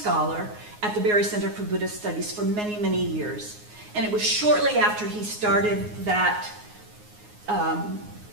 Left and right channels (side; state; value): left; late; 9.5 ms